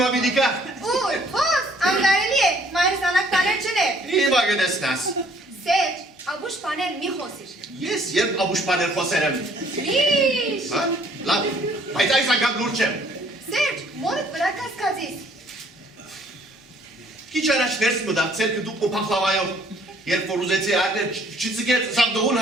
բիդի կա։ Ուր, հոս, անգարելի է, մայրս անակ տաներ չներ։ Հիմա գնեսնաս։ Սեջ, աբուշ պաներ մի խոսիր։ Ես երբ աբուշ պաներ խոսեր եմ։ Լիշ։ Լավ, բայց այս անգամ լուր չեմ։ Սեջ, մորդ վրա կասկածիս։ Քիչ առաջ ներս մտածել դուք փախլավայով, երբ որ ուզեցի արնել, չծգեց սա դողուն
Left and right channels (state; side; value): normal; both; correlation 0.61